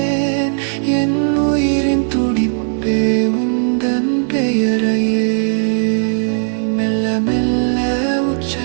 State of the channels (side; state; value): left; silent; 69 dB below the other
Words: என் உயிரின் துடிப்பே உந்தன் பெயரையே மெல்ல மெல்ல